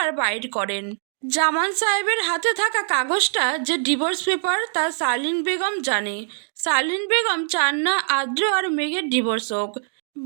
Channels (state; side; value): silent; left; 64 dB below the other